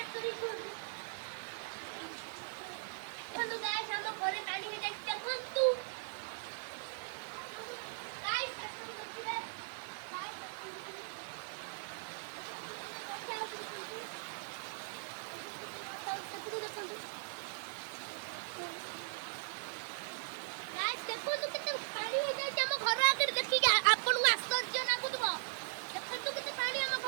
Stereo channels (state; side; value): silent; left; digital silence